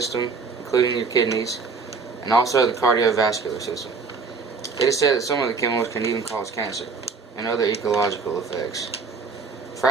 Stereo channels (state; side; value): quieter; left; 4.7 dB